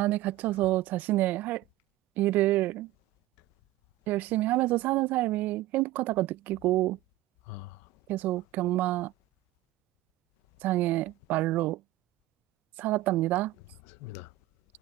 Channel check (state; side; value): quieter; left; 15.8 dB